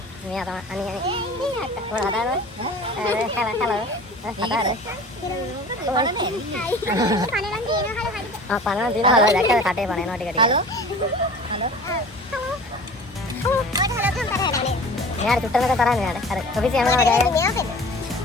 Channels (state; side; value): normal; both; correlation 0.41